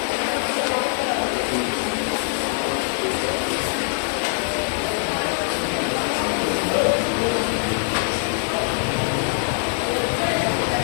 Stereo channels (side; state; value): right; silent; digital silence